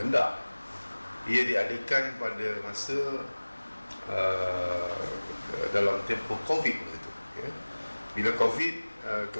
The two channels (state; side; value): inverted; both; correlation -1.00